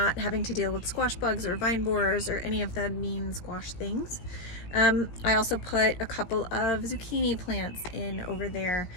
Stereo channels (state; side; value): late; right; 17 ms